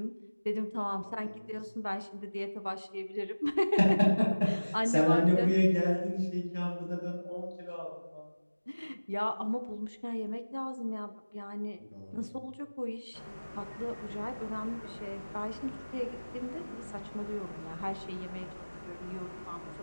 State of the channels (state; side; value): inverted; both; correlation -1.00